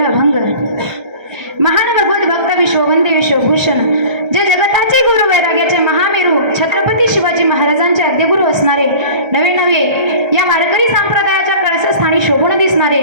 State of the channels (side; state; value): left; late; 1.3 ms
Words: अभंग. महान भगवत भक्त विश्ववंदे विश्वभूषण जे जगताचे गुरु वैराग्याचे महामेरू छत्रपती शिवाजी महाराजांचे आद्यगुरु असणारे नवे नवे या वारकरी संप्रदायाच्या कळसस्थानी शोभून दिसणारे